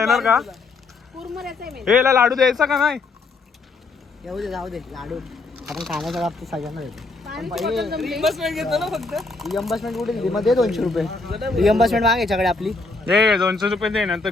का? कुरमुऱ्याचा आहे मेन. हे याला लाडू द्यायचा का नाही? येऊ दे, जाऊ दे. लाडू आपण खाण्याच्या बाबतीत सगळ्यांना देतो. पाण्याची बॉटल जमली. रिअम्बर्समेंट कुठे दिली मग? दे 200 रुपये रिअम्बर्समेंट माग याच्याकडे आपली. हे 200 रुपये दे, नंतर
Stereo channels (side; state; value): right; quieter; 3.7 dB